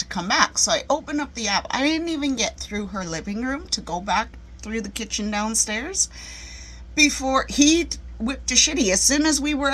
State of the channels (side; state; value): both; identical; correlation 1.00